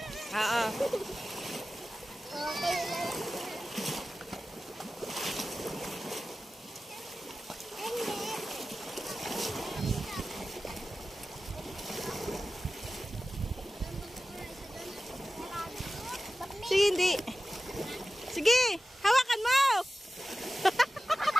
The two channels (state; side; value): normal; both; correlation 0.95